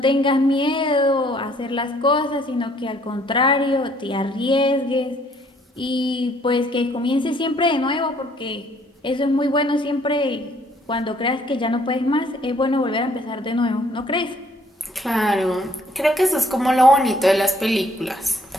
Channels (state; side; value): normal; both; correlation 0.63